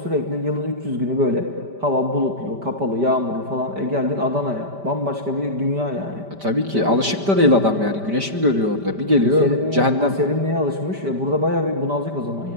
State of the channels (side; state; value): left; late; 5.1 ms